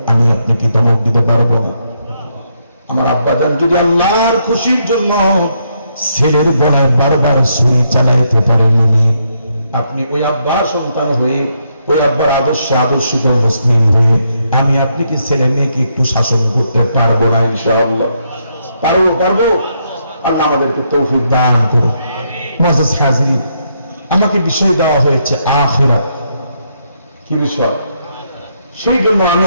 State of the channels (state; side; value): inverted; both; correlation -0.77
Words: আমি আপনি কি ধমক দিতে পারবো না? আমার আব্বাজান যদি আল্লাহর খুশির জন্য ছেলের গলায় বারবার ছুরি চালাইতে পারেননি, আপনি ওই আব্বার সন্তান হয়ে ওই আব্বার আদর্শে আদর্শিত মুসলিম হয়ে আমি আপনি কি ছেলে মেয়েকে একটু শাসন করতে পারবো না? ইনশাআল্লাহ পারবো। আল্লাহ আমাদেরকে তৌফিক দান করুন। মুআজ্জাজ হাজিরিন, আমাকে বিষয় দেওয়া হয়েছে আখিরাত। কি বিষয়? সেই জন্য আমি